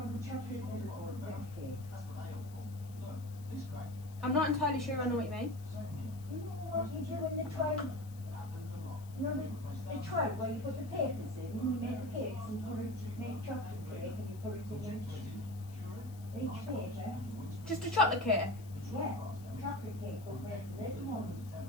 I'm not entirely sure I know what you mean. What you do in the tray, you know the tray where you put the papers in, and you make the cakes and make chocolate cake and you put it in each paper. Just a chocolate cake? Yeah, chocolate cake but with little ones.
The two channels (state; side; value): noise; left; hiss, 22 dB below the sound